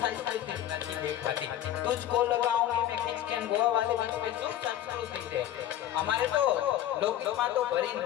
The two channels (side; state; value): right; quieter; 12.2 dB